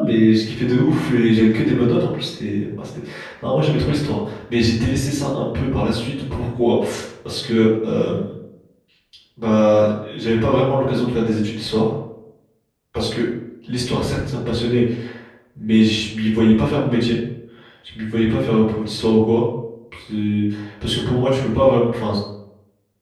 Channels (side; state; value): both; identical; correlation 1.00